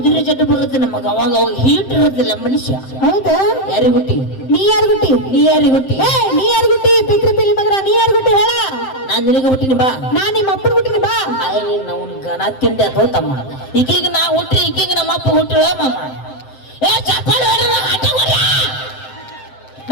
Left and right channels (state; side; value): late; right; 7.7 ms